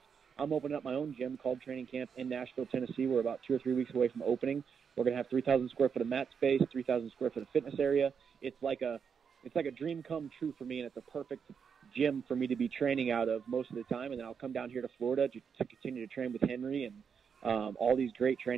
I'm opening up my own gym called Training Camp in Nashville, Tennessee. We're about 2 or 3 weeks away from opening. We're going to have 3,000 square foot of mat space, 3,000 square foot of fitness area. It's like a dream come true for me, and it's a perfect gym for me to be training out of most of the time. And then I'll come down here to Florida to continue to train with Henry and all these great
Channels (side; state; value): left; quieter; 6.7 dB